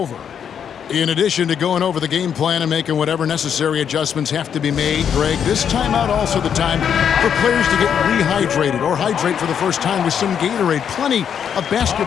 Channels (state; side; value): quieter; right; 8.1 dB